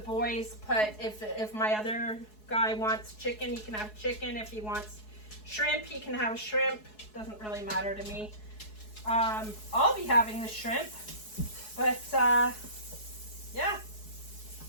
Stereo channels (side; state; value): right; late; 4.7 ms